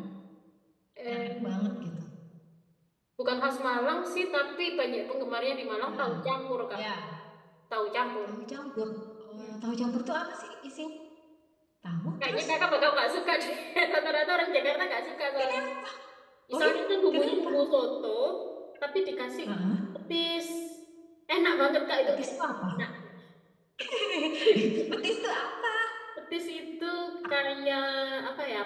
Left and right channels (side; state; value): both; identical; correlation 1.00